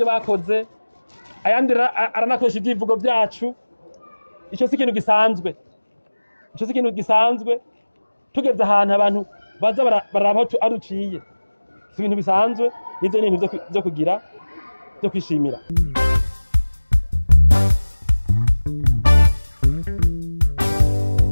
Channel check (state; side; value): inverted; both; correlation -1.00